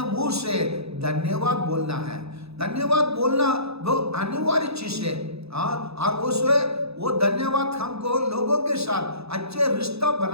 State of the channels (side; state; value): left; late; 0.79 ms